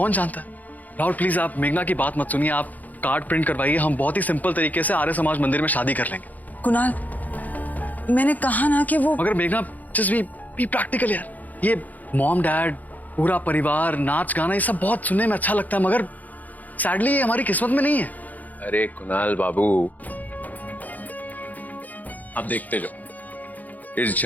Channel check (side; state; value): right; late; 0.080 ms